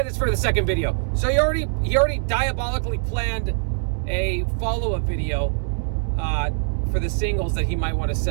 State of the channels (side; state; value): left; silent; digital silence